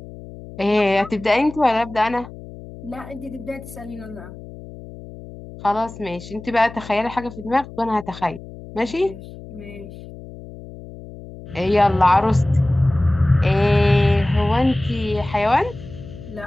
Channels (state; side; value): noise; left; hum, 15 dB below the sound